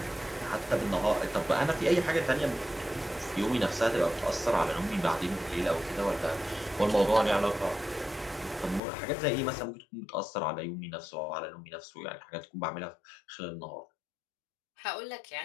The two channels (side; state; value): right; drops out; at 8.8 s